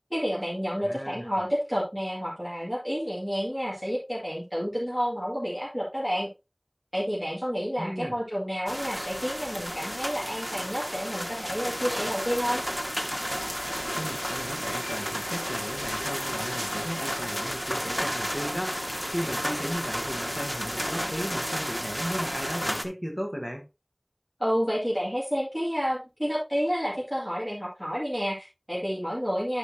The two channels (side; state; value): both; identical; correlation 1.00